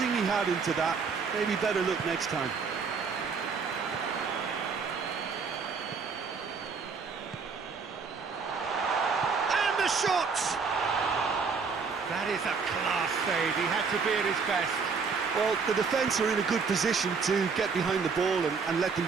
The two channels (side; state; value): left; quieter; 5.3 dB